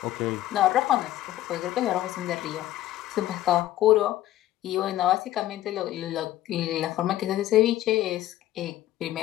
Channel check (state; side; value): quieter; right; 14.2 dB